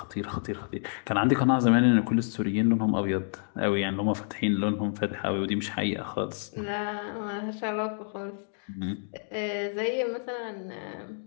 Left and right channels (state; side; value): silent; right; digital silence